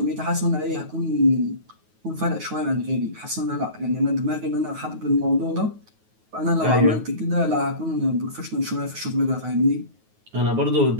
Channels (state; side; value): late; left; 9.4 ms